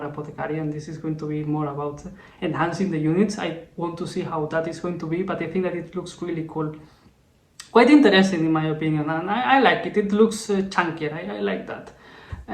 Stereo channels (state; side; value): identical; both; correlation 1.00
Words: and this is going to be more about enhancing the units. I want to see how that is going to be, but I think that it looks really cool. Quite interesting in my opinion, and I like it. It looks chunkier. I like that.